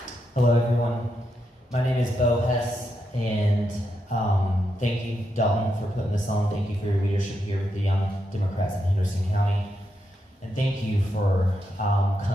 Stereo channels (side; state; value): both; normal; correlation 0.83